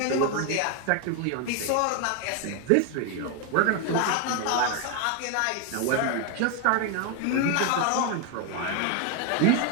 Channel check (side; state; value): both; different; correlation 0.01